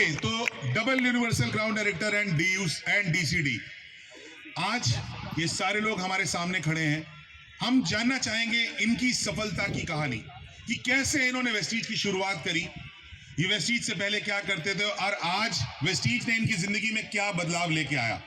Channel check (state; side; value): identical; both; correlation 1.00